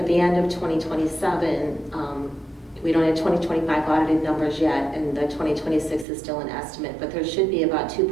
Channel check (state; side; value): drops out; left; at 6.1 s